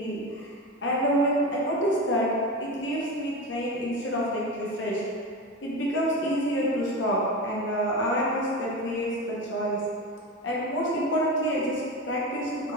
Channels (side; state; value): both; normal; correlation 0.24